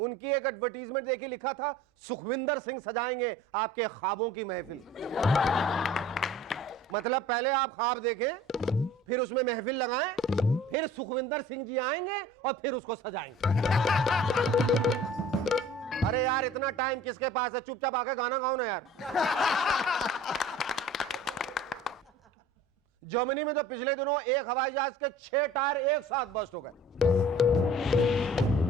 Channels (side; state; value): both; normal; correlation 0.46